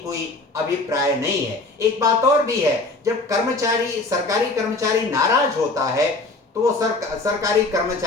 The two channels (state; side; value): quieter; right; 3.2 dB